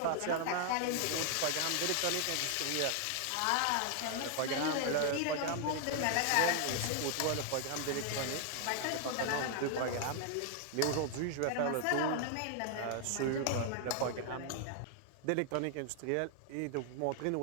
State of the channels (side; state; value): both; different; correlation 0.00